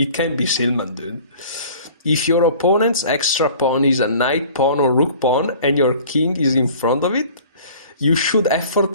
Silman, dude. If your opponent's extra pawn is a knight pawn or rook pawn and your king is in front of it, you should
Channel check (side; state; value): both; inverted; correlation -0.48